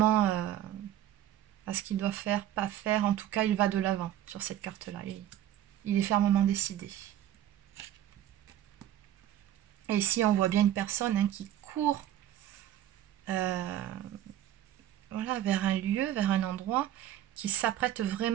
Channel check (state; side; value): quieter; left; 12.2 dB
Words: à ce qu'il doit faire, pas faire. En tout cas, il va de l'avant sur cette carte-là. Il est fermement décidé. Et ici, on voit bien une personne hein, qui court voilà, vers un lieu, vers un endroit, qui s'apprête